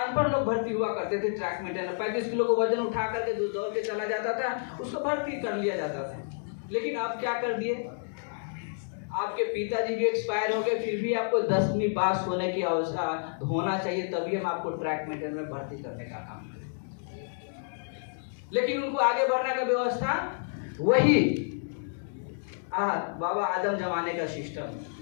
लोग भर्ती हुआ करते थे। ट्रैक मेंटेनर 35 किलो को वजन उठा करके दौड़ के चला जाता था, उसको भर्ती कर लिया जाता था। लेकिन आप क्या कर दिए, आपके पिताजी भी एक्सपायर हो गए, फिर भी आपको 10वीं पास होने की आवश्यकता होना चाहिए, तभी हम आपको ट्रैक मेंटेनर में भर्ती करने का काम करें। लेकिन उनको आगे बढ़ने का व्यवस्था वही बाबा आदम जमाने का सिस्टम,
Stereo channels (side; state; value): right; silent; digital silence